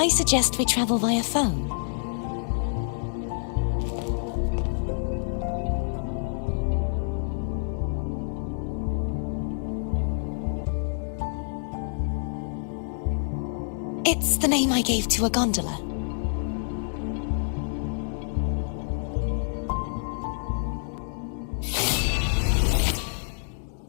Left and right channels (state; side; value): silent; right; digital silence